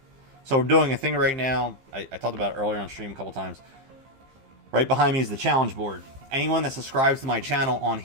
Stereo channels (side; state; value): left; late; 15 ms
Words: So we're doing a thing right now. I talked about it earlier on stream a couple times. Right behind me is the challenge board. Anyone that subscribes to my channel on